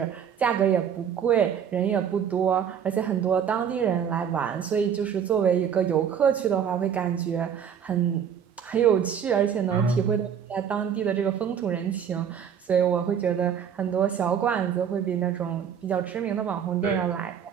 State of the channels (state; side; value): quieter; left; 8.1 dB